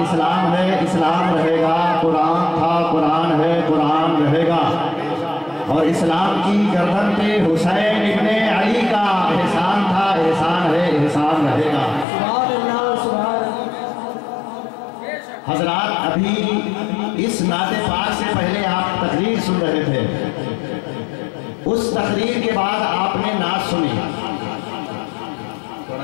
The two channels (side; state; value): right; drops out; at 12.1 s